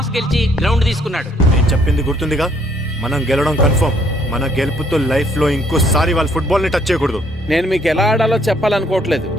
గెలిచి గ్రౌండ్ తీసుకున్నాడు. నేను చెప్పింది గుర్తుందిగా, మనం గెలవడం కన్ఫర్మ్. మన గెలుపుతో లైఫ్ లో ఇంకోసారి వాళ్ళ ఫుట్బాల్ ని టచ్ చేయకూడదు. నేను మీకు ఎలా ఆడాలో చెప్పాలనుకోవట్లేదు,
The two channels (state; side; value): normal; both; correlation 0.66